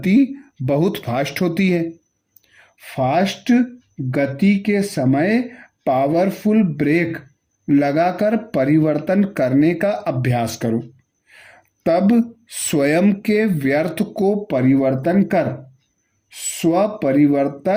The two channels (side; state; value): both; identical; correlation 1.00